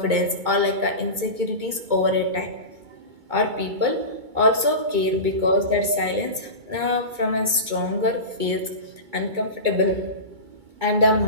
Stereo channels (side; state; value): left; late; 2.2 ms